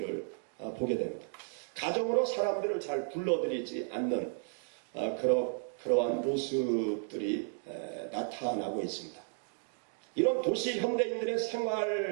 보게 됩니다. 가정으로 사람들을 잘 불러들이지 않는 그러한 모습들이 나타나고 있습니다. 이런 도시 현대인들의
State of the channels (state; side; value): silent; left; 55 dB below the other